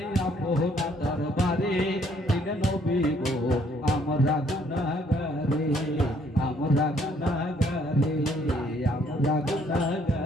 আপনার দরবারে দিন নবী গো আমরা গুনাহগারে আমরা গুনাহগারে আমরা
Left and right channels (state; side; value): normal; both; correlation 0.65